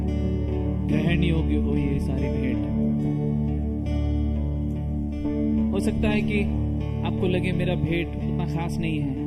ग्रहण योग्य हो ये सारी भेंट। हो सकता है कि आपको लगे मेरा भेंट उतना खास नहीं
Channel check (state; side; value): identical; both; correlation 1.00